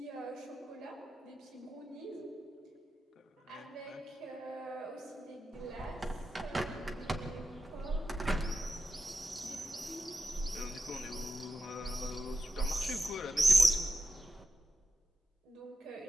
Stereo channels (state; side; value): normal; both; correlation 0.89